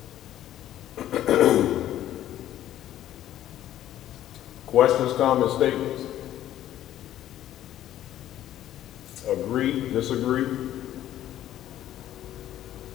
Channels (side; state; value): right; quieter; 12.5 dB